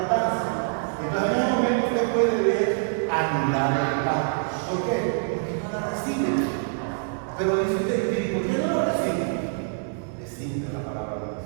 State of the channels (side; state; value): left; silent; 61 dB below the other